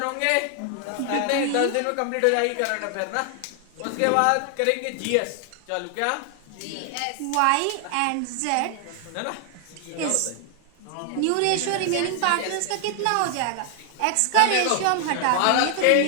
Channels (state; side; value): different; both; correlation 0.00